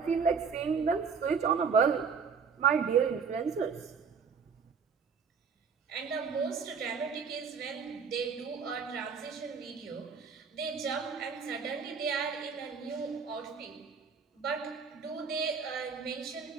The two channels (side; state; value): left; quieter; 5.8 dB